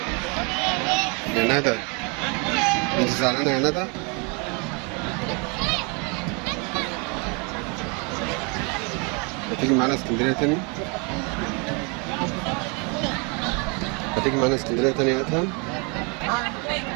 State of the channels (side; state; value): left; quieter; 32.6 dB